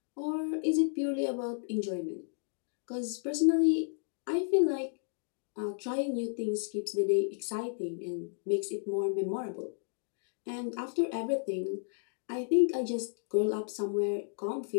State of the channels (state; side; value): silent; right; digital silence